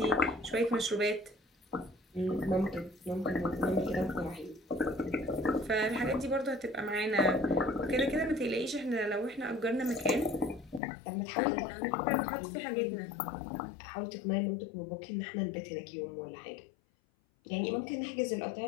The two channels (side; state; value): right; drops out; at 10.8 s